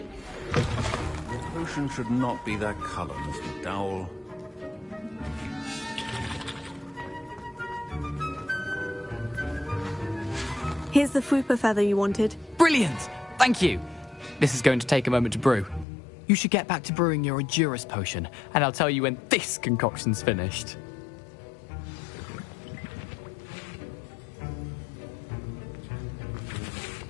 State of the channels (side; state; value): right; drops out; at 15.9 s